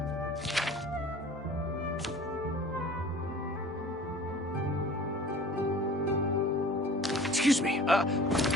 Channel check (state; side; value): normal; both; correlation 0.44